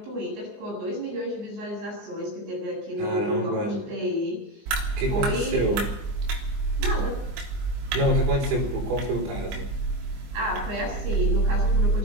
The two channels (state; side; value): late; left; 20 ms